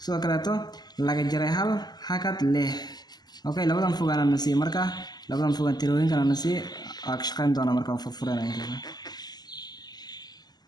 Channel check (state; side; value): late; right; 0.20 ms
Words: sidoo kaleeto laga jaray hal hakad lix. labadan fogaan aan siiyay marka labadan fogaan tirooyinkan aan siiyay ka shaqeyn doona marka furfuranay.